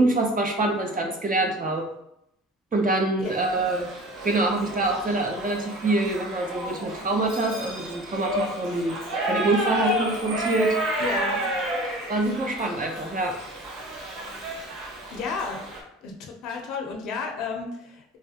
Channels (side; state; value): both; normal; correlation 0.41